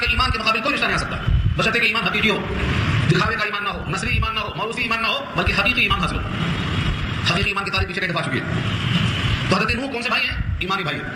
ایمان کے مقابل کوئی رشتہ نہیں آ سکتا بشرطے کہ ایمان حقیقی ہو، دکھاوے کا ایمان نہ ہو، نسلی ایمان نہ ہو، موروثی ایمان نہ ہو، بلکہ حقیقی ایمان حاصل ہو. حقیقی ایمان کی تعریف پیچھے کہہ دفعہ چکی ہے. تو حضرت نوح کون سے بھائی ہیں؟ ایمانی بھائی.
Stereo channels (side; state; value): both; identical; correlation 1.00